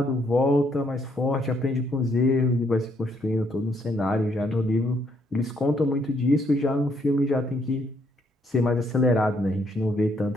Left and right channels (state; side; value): normal; both; correlation 0.71